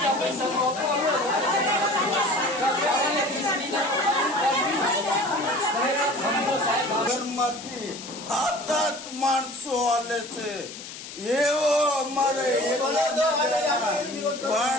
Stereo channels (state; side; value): noise; left; hiss, 12 dB below the sound